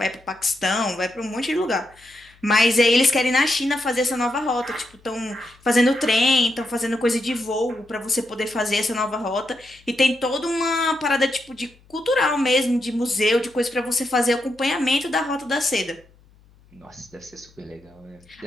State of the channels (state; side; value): noise; left; hum, 29 dB below the sound